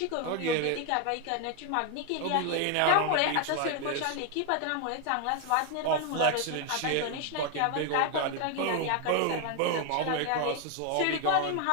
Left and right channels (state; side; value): different; both; correlation 0.01